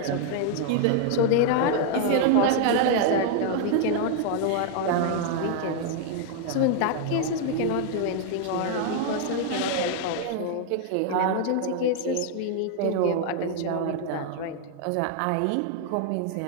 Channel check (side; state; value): both; different; correlation 0.00